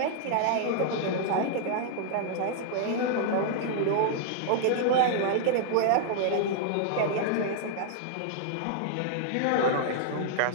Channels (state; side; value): different; both; correlation -0.01